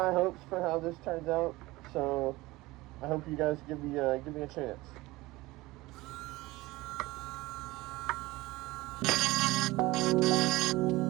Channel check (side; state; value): left; quieter; 20.0 dB